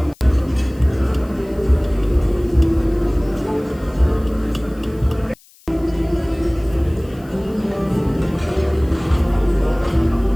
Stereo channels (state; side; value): noise; left; hiss, 28 dB below the sound